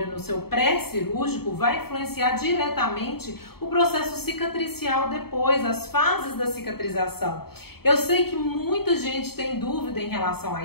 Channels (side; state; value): right; late; 0.96 ms